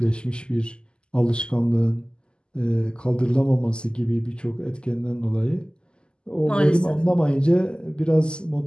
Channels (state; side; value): late; right; 0.048 ms